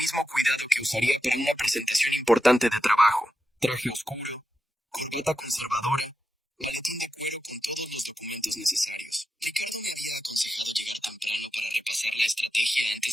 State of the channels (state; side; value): normal; both; correlation 0.90